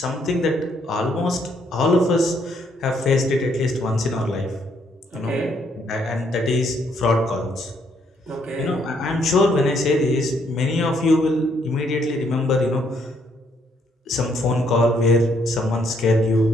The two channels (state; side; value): normal; both; correlation 0.71